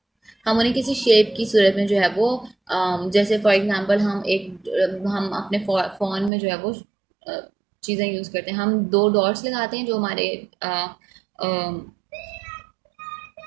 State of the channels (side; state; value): left; drops out; at 6.3 s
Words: हम उन्हें किसी शेप की सूरत में जो है वो जैसे फॉर एग्जांपल हम अपने फ़ोन में जो है वो चीज़ें यूज़ करते हैं। हम 2 डॉट्स लगाते हैं जो हमारे